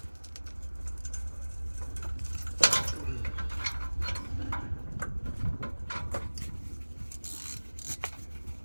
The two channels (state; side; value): inverted; both; correlation -1.00